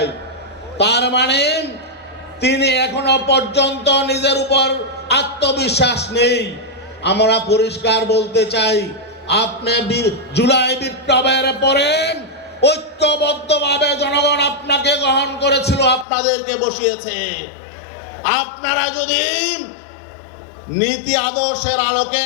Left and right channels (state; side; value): drops out; right; at 16.1 s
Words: তার মানে তিনি এখনো পর্যন্ত নিজের উপর আত্মবিশ্বাস নেই। আমরা পরিষ্কার বলতে চাই, আপনি জুলাই বিপ্লবের পরে ঐক্যবদ্ধভাবে জনগণ আপনাকে গ্রহণ করেছিল, আপনাদেরকে বসিয়েছে। আপনারা যদি নীতি আদর্শের